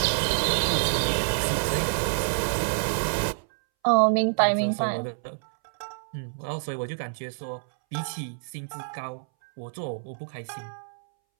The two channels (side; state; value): left; silent; 60 dB below the other